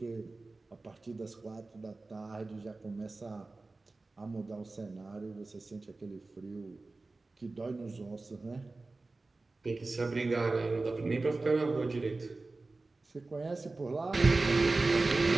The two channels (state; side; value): quieter; left; 3.4 dB